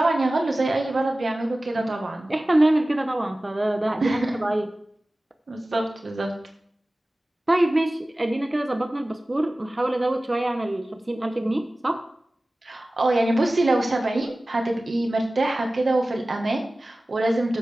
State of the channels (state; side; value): normal; both; correlation 0.97